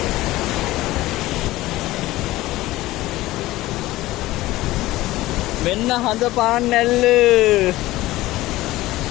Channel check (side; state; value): right; quieter; 17.4 dB